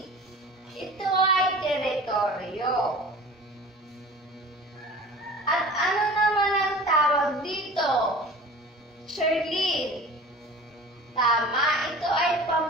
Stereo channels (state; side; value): normal; both; correlation 0.40